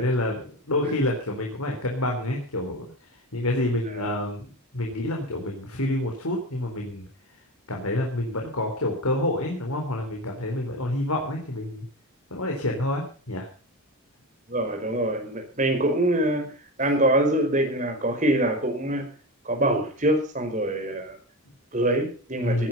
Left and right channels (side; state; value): both; normal; correlation 0.23